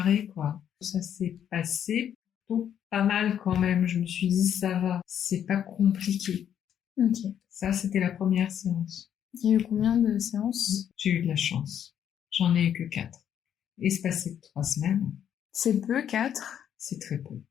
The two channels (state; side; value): quieter; right; 9.4 dB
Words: quoi. Ça s'est passé plutôt pas mal quand même. Je me suis dit, ça va, c'est pas compliqué. Ok. Ça, c'était la première séance. Il y a eu combien de séances? J'ai eu de la chance. J'en ai eu que 4. Espacé 3 semaines. C'est peu, 4? C'est très peu.